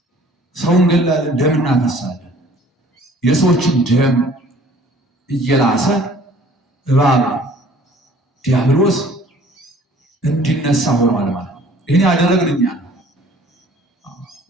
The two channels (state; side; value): normal; both; correlation 0.53